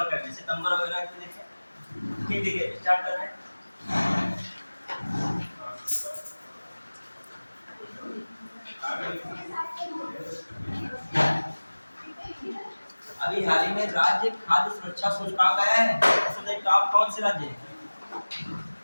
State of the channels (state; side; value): inverted; both; correlation -1.00